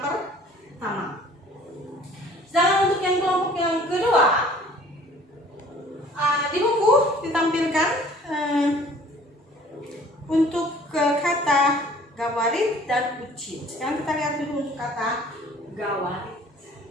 Sedangkan untuk yang kelompok yang kedua, di buku ditampilkan untuk kata gawarit dan ucit. Sekarang kita lihat dulu untuk kata gawarit.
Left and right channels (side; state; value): both; normal; correlation 0.52